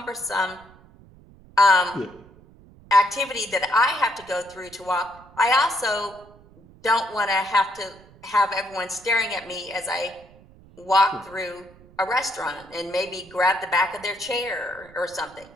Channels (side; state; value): right; noise; rumble, 24 dB below the sound